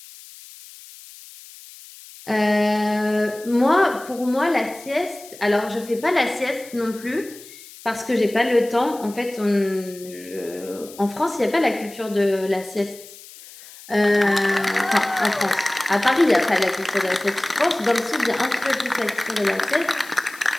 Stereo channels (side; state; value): left; noise; hiss, 19 dB below the sound